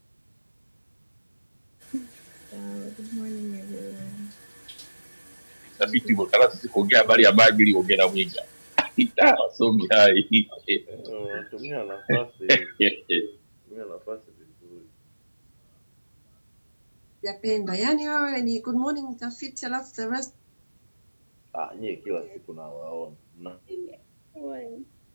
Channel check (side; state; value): both; inverted; correlation -1.00